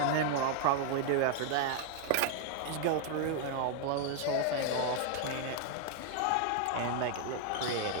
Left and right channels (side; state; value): both; different; correlation 0.00